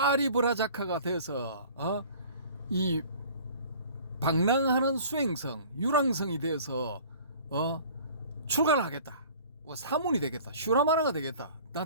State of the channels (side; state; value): both; inverted; correlation -0.47